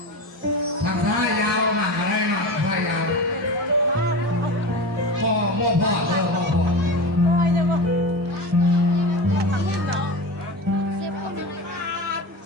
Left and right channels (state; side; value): normal; both; correlation 0.27